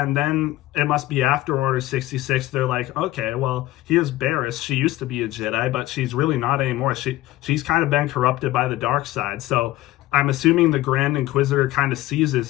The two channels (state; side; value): quieter; right; 16.4 dB